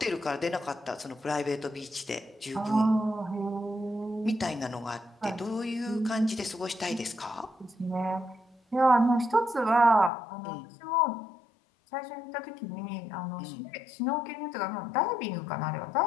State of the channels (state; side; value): drops out; right; at 10.1 s